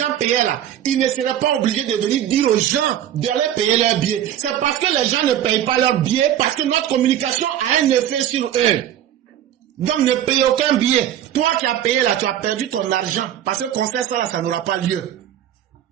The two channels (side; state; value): left; quieter; 11.1 dB